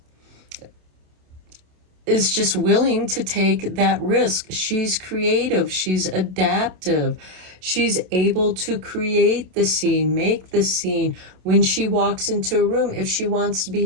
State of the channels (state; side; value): late; left; 27 ms